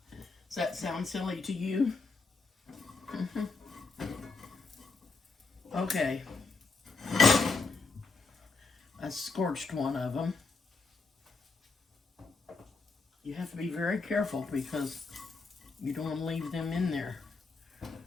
Does that sound silly to you? Okay. I scorched one of them. You have to be very careful because you don't want to leave them in there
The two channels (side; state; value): right; quieter; 4.1 dB